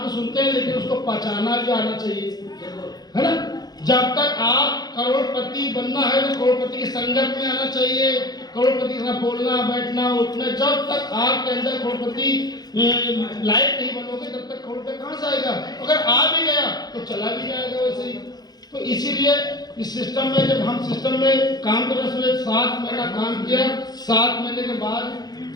सुनते हैं, लेकिन उसको पहचाना भी आना चाहिए, है ना। जब तक आप करोड़पति बनना है तो करोड़पति की संगत में आना चाहिए, करोड़पति के साथ बोलना, बैठना, उठना। जब तक आपके अंदर करोड़पति लायक नहीं बनोगे, तब तक करोड़पति कहाँ से आएगा। अगर आ भी गया तो चला भी जाएगा वैसे ही। तो इसीलिए इस सिस्टम में, जब हम सिस्टम में काम करने से 7 महीना काम किया, 7 महीने के बाद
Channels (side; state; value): right; late; 0.19 ms